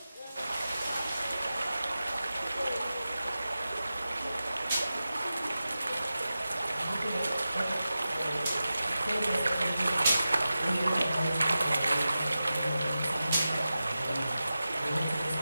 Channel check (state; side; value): inverted; both; correlation -0.93